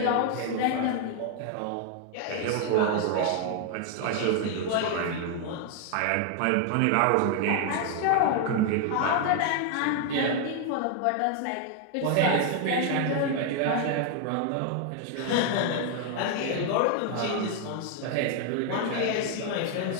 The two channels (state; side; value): different; both; correlation 0.00